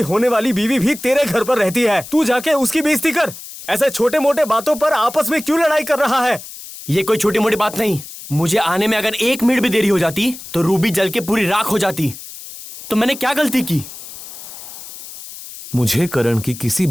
होने वाली बीवी भी तेरे घर पर रहती है। तू जाके उसकी बेइज्जती कर। ऐसे छोटे मोटे बातों पर आपस में क्यों लड़ाई कर रहा है? ये कोई छोटी मोटी बात नहीं। मुझे आने में अगर 1 मिनट भी देरी हो जाती तो रूबी जल के पूरी राख हो जाती। तो मैंने क्या गलती की? मुझे करण की किसी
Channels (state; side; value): noise; left; hiss, 14 dB below the sound